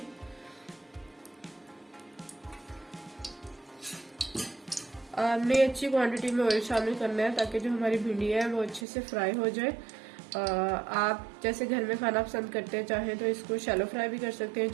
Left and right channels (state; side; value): drops out; left; at 8.8 s